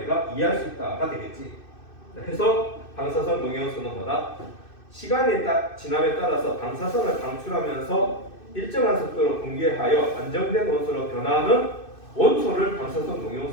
이해할 수 있다가 되겠지. 그래서 방사선 동위원소는 뭐다? 시간이 지남에 따라서 방사선을 방출하면서 일정한 속도로 분개하여 안정된 원소로 변하는 원소를 방사선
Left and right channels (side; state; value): right; late; 2.6 ms